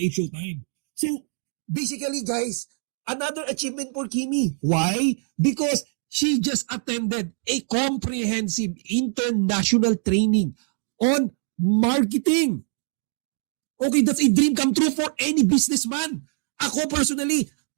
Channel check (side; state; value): left; silent; 55 dB below the other